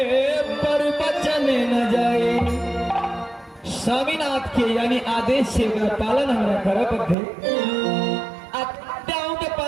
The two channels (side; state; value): left; drops out; at 7.2 s